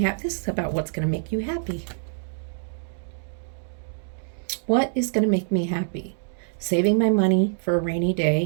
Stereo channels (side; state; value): left; silent; digital silence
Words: happy. This is about what's going to make you happy. What is going to make me happy? Saving my money for a rainy